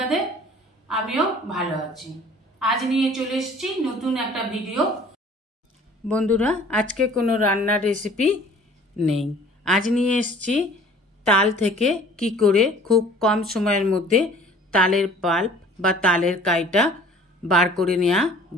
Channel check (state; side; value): normal; both; correlation 0.50